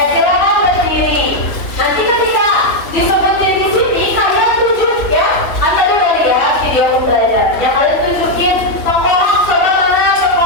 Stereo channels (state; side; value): late; right; 3.3 ms